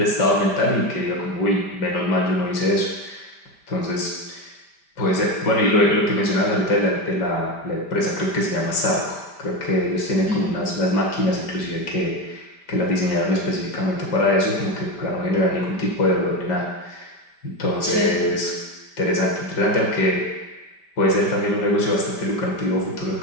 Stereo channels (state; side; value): late; right; 5.1 ms